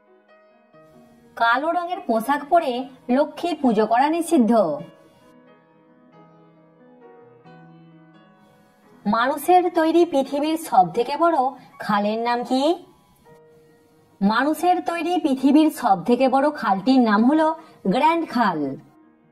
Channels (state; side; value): identical; both; correlation 1.00